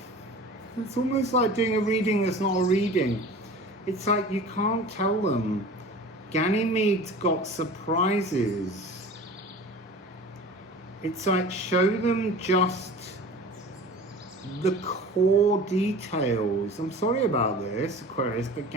it's almost like doing a reading that's not a reading. It's like you can't tell them. Ganymede's got surprises. It's like show them just the core details. I'm sorry about this, Aquarius, but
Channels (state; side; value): normal; both; correlation 0.39